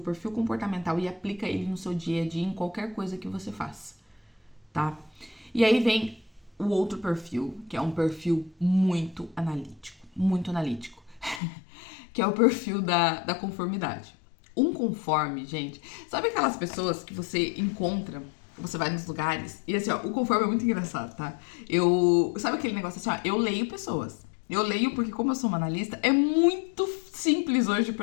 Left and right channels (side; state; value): right; drops out; at 11.4 s